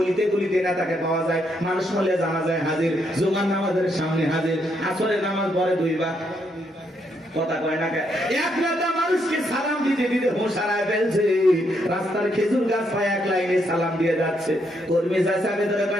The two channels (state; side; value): normal; both; correlation 0.76